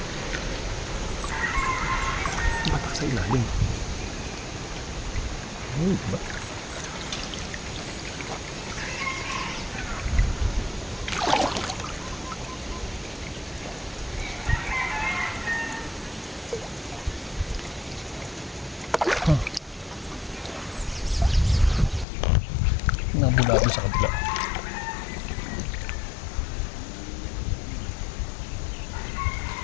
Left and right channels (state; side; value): drops out; right; at 22.1 s